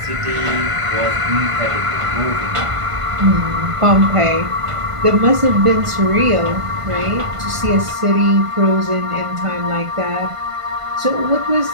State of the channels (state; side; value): late; left; 1.5 ms